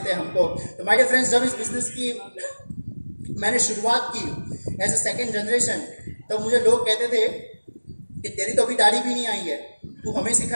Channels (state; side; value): inverted; both; correlation -1.00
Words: हैं हमको। तो माय डियर फ्रेंड्स जब इस बिजनेस की मैंने शुरुआत की एज ए सेकेंड जनरेशन, तो मुझे लोग कहते थे कि तेरी तो अभी दाढ़ी भी नहीं आई है, तू हमें